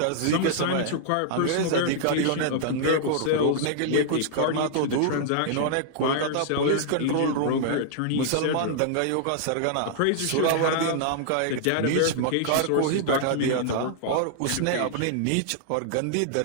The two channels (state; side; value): different; both; correlation -0.01